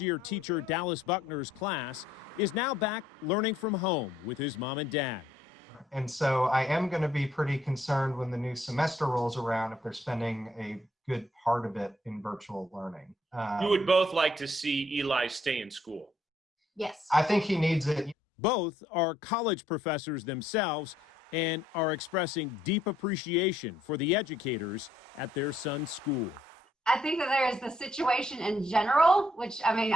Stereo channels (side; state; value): both; normal; correlation 0.68